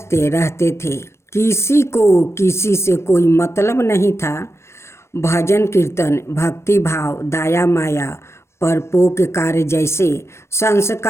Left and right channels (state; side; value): late; right; 0.13 ms